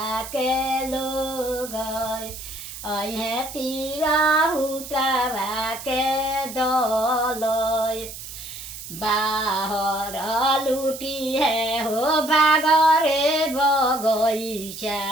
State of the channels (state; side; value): noise; right; hiss, 11 dB below the sound